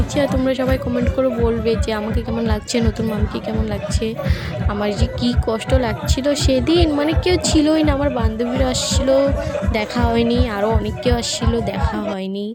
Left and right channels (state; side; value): identical; both; correlation 1.00